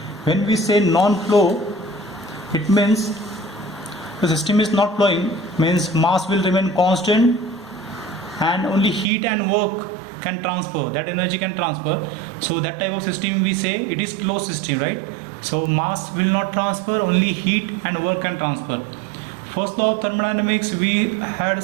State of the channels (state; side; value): drops out; left; at 9.1 s